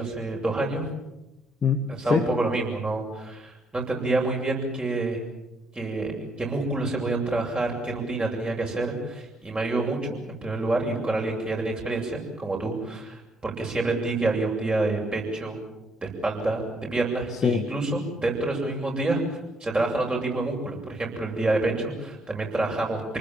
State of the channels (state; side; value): normal; both; correlation 0.71